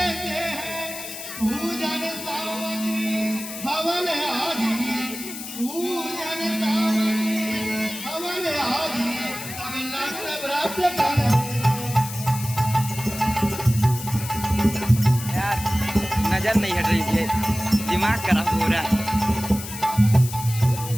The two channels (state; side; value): noise; left; hiss, 10 dB below the sound